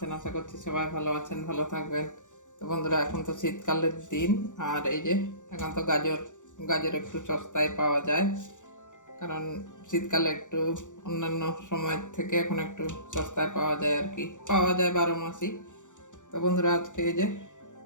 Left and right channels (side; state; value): right; late; 0.86 ms